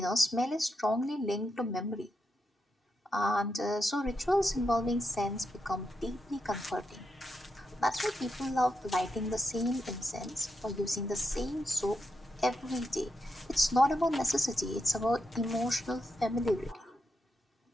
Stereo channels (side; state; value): both; normal; correlation 0.84